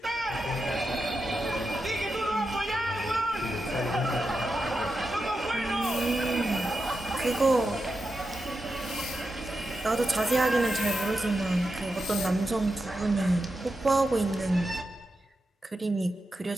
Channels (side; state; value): both; normal; correlation 0.88